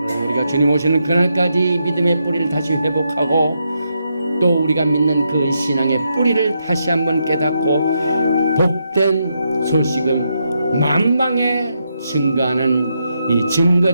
우리가 주님 오시는 그날까지 믿음의 뿌리를 다시 회복하고 또 우리가 믿는 그 신앙의 뿌리를 다시 한번 깨닫고 복된 소식을 만방에 증거하는 이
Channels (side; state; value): both; inverted; correlation -0.81